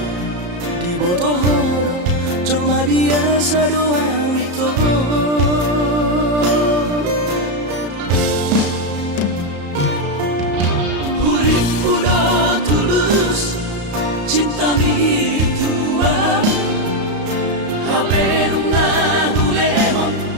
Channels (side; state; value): left; late; 34 ms